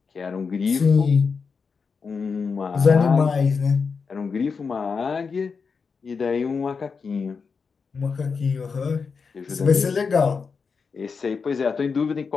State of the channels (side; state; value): right; quieter; 5.3 dB